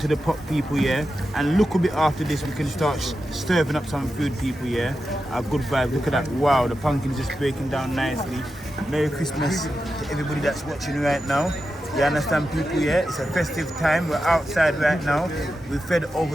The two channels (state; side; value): normal; both; correlation 0.90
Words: the pot, people, yeah. And look a bit after this, we can start stirring up some food, people, yeah. Our good vibes. Look at that. Wow, the pumpkin's just breaking down nicely. Merry Christmas to everybody that's watching right now. You understand, people, yeah? It's a festive time. We're outside right now. We've fed